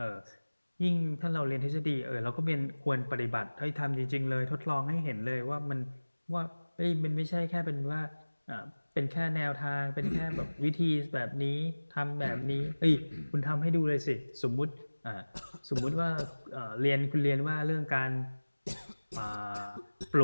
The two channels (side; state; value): both; inverted; correlation -1.00